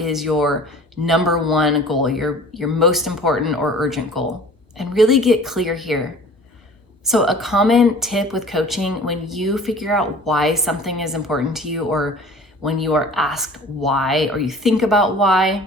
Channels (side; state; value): both; normal; correlation 0.46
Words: your number 1 goal, your most important or urgent goal? And really get clear here. So a common tip with coaching, when you figure out why something is important to you, or when you are asked why, or you think about why,